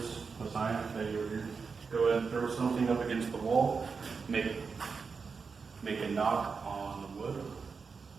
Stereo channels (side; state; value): left; quieter; 5.1 dB